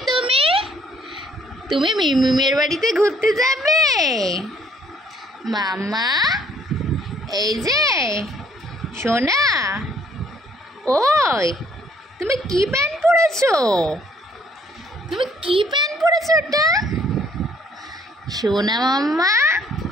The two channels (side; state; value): both; normal; correlation 0.62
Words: তুমি? তুমি মিমিমের বাড়িতে ঘুরতে যাবে মাম্মা? এই যে সোনা, ওই তুমি কি প্যান্ট পরেছো? তুমি কি প্যান্ট পরেছো ওটা? সোনা মাম্মা,